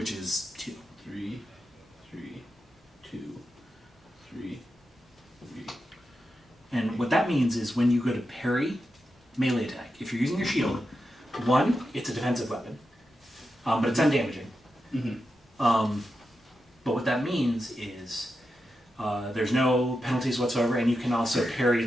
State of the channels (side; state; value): both; normal; correlation 0.89